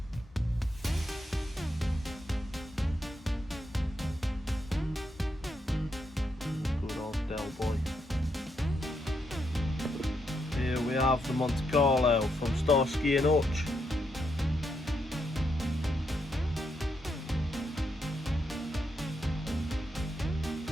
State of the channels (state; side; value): normal; both; correlation 0.80